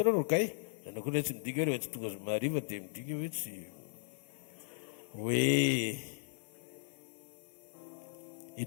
rokay zanao koa tsy midika hoe tsy tonga zomariva dia midika hoe tsy hoe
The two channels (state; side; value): silent; right; digital silence